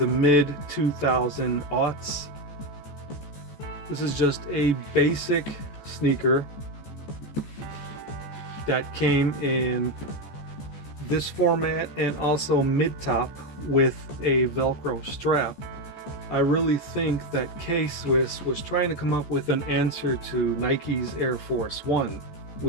mid 2000 aughts. This is just a basic sneaker that came in this format and also mid-top with a Velcro strap. I really think that K-Swiss was trying to come up with an answer to Nike's Air Force One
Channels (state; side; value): late; right; 14 ms